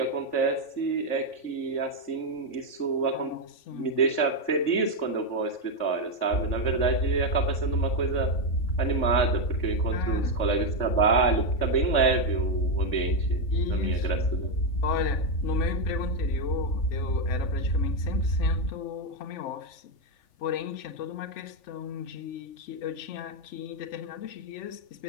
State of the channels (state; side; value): late; right; 3.5 ms